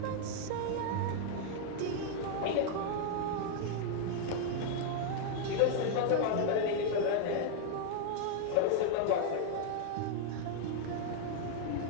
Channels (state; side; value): different; both; correlation 0.00